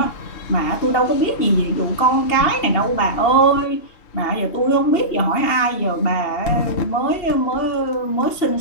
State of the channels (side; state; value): right; late; 2.8 ms